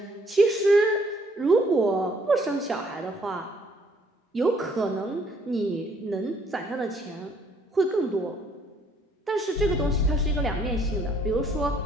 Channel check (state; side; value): normal; both; correlation 0.64